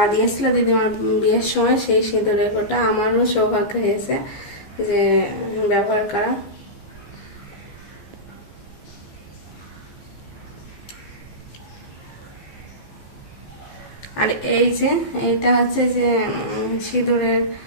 দিয়েছিল দিদিমার বিয়ের সময়, সেই সিঁদুরের কোটা আমারও সৌভাগ্য হয়েছে যে ব্যবহার করা। আর এই যে এইটা হচ্ছে যে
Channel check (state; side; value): late; right; 14 ms